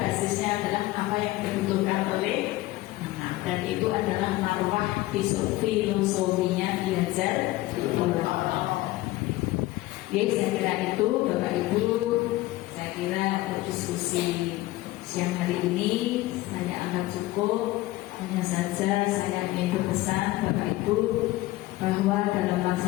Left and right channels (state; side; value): quieter; right; 17.9 dB